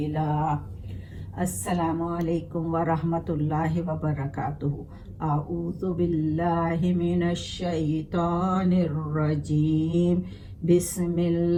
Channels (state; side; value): identical; both; correlation 1.00